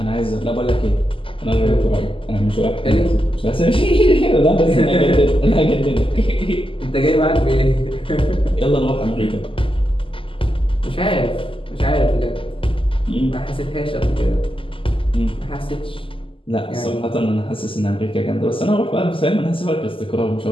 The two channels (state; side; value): late; right; 0.25 ms